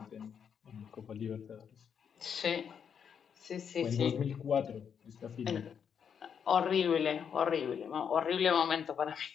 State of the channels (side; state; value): right; quieter; 7.5 dB